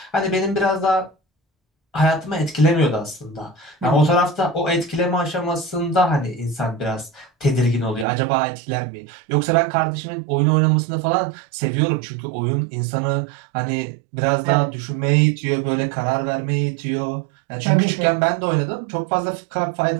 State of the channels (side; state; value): left; drops out; at 8.1 s